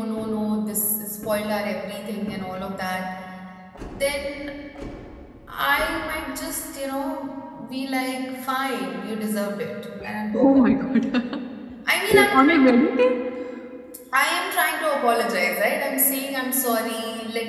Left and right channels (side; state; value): both; identical; correlation 1.00